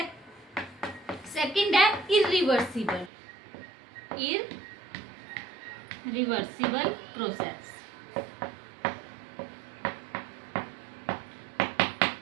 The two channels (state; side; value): drops out; left; at 3.1 s